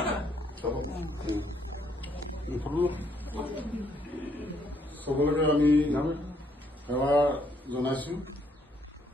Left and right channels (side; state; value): both; normal; correlation 0.70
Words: সকলোকে আমি সেৱা জনাইছো।